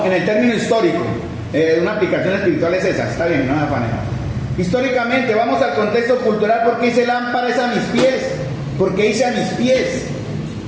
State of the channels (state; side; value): identical; both; correlation 1.00